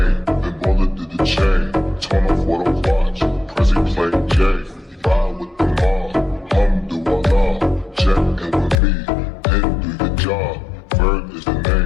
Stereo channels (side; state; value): right; drops out; at 8.8 s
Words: then roller did the chain. Turn off what I watch, Prezi play J.